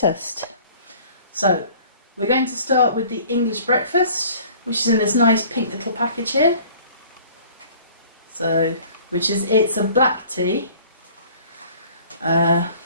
So we're going to start with the English breakfast, which is in this nice pink little package here. So, it's a black tea.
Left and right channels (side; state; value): both; inverted; correlation -0.50